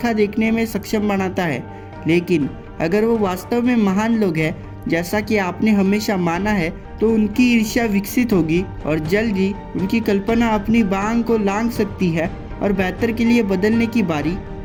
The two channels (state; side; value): identical; both; correlation 1.00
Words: देखने में सक्षम बनाता है। लेकिन अगर वो वास्तव में महान लोग हैं, जैसा कि आपने हमेशा माना है, तो उनकी ईर्ष्या विकसित होगी और जल्द ही उनकी कल्पना अपनी बांग को लांघ सकती है और बेहतर के लिए बदलने की बारी